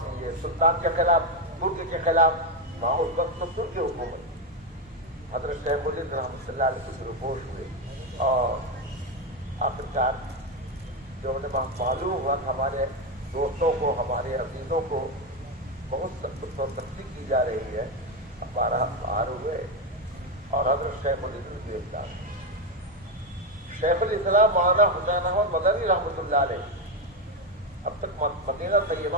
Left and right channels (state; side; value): normal; both; correlation 0.08